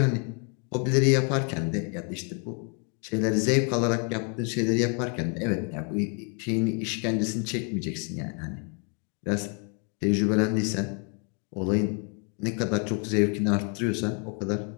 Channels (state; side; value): quieter; right; 38.2 dB